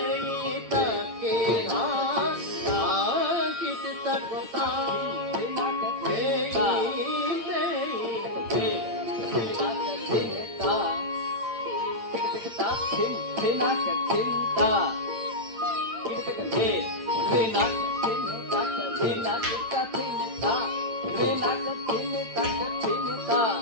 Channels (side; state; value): left; late; 8.8 ms